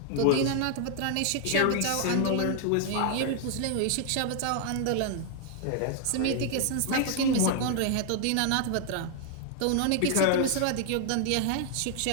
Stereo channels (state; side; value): different; both; correlation 0.00